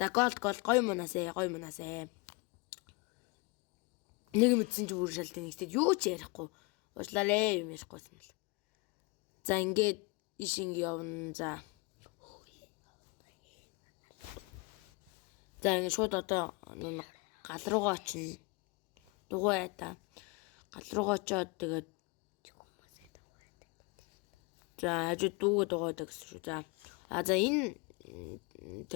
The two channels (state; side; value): quieter; right; 27.9 dB